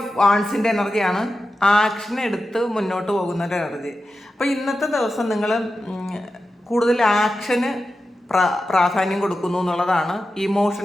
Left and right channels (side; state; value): both; normal; correlation 0.91